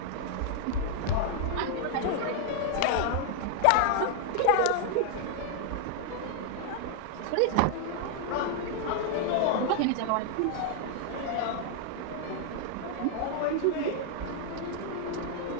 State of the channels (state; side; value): different; both; correlation 0.00